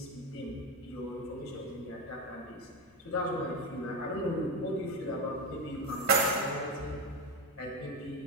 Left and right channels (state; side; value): normal; both; correlation 0.14